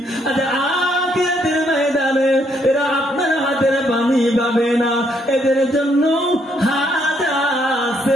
আচ্ছা, আখিরাতের ময়দানে এরা আপনার হাতের পানি পাবে না। এদের জন্য হাজা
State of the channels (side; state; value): both; normal; correlation 0.72